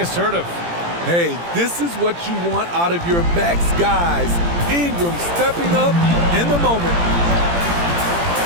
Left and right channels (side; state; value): left; late; 17 ms